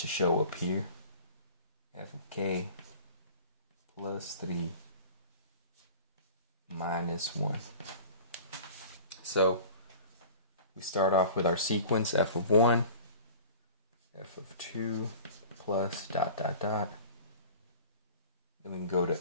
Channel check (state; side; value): inverted; both; correlation -0.41